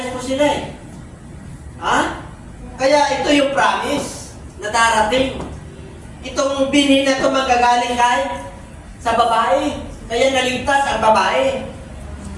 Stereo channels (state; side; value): identical; both; correlation 1.00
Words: po sila eh. Kaya ito yung promise na darating. Itong binhi na ito magagaling kahit sa babae. Kaya naligtas ang babae.